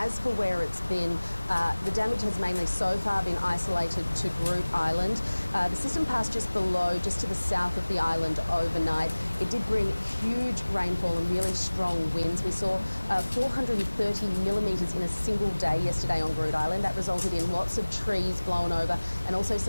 for where it's been, the damage has mainly so far been isolated to Groot Island. The system passed just below, just to the south of the island overnight. It did bring huge rainfall and really strong winds. We saw 430 millimetres in a single day yesterday on Groot Island. That resulted in lots of trees blown over and also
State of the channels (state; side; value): inverted; both; correlation -1.00